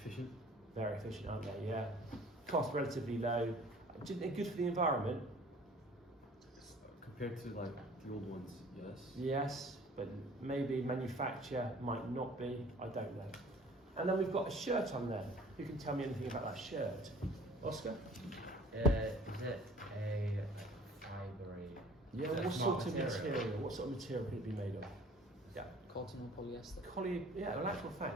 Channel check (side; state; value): both; normal; correlation 0.50